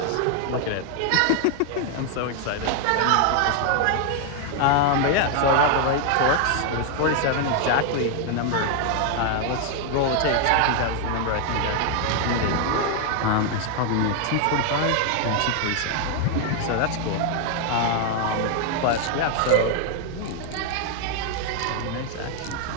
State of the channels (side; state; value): both; different; correlation 0.00